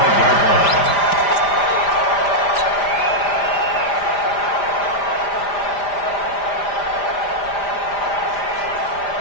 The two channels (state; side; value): late; right; 5.0 ms